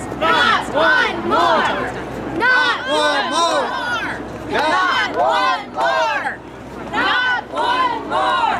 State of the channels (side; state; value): both; identical; correlation 1.00